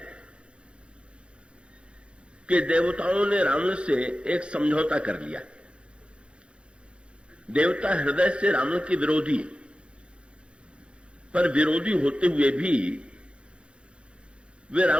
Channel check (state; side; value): late; left; 0.057 ms